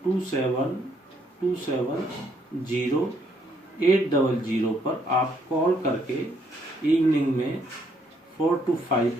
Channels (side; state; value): both; normal; correlation 0.70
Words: पर आप कॉल करके इवनिंग में 4 to 5